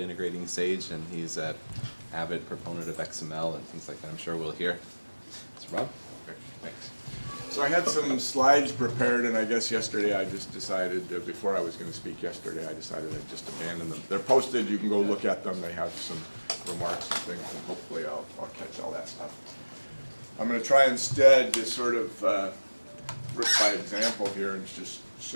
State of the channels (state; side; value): inverted; both; correlation -1.00